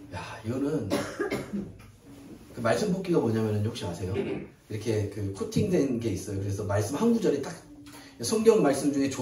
이거는 그 말씀 뽑기가 뭐냐면은 혹시 아세요? 이렇게 그 코팅된 게 있어요. 그래서 말씀 한 구절이 딱 성경 말씀 중에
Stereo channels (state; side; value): identical; both; correlation 1.00